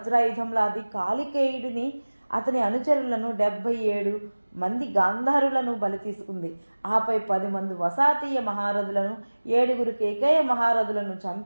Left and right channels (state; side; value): inverted; both; correlation -1.00